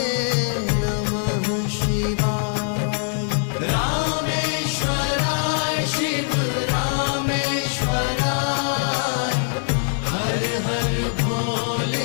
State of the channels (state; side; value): silent; right; 59 dB below the other